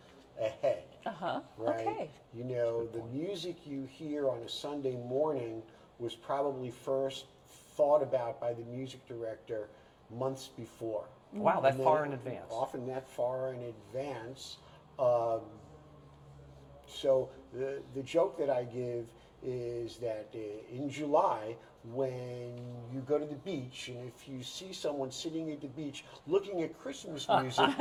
ahead. Right? Okay. The music you hear on a Sunday morning was probably first thought about by the music director months before. Wow, that And then far in advance. Often that far in advance. So the joke that I give is that in July, when you go to the beach, and if you see someone sitting at the beach looking at Christmas music,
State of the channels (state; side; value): identical; both; correlation 1.00